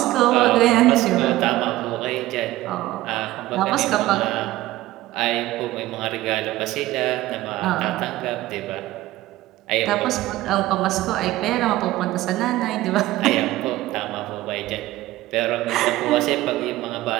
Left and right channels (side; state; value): left; quieter; 16.6 dB